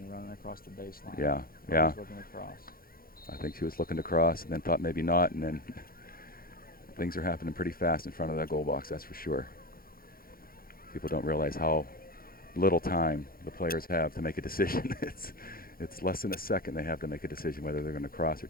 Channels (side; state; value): right; late; 0.42 ms